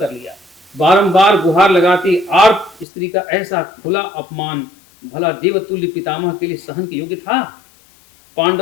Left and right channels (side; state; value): right; drops out; at 2.9 s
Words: लिया? बारंबार गुहार लगाती आर्त स्त्री का ऐसा खुला अपमान भला देवतुल्य पितामह के लिए सहन के योग्य था?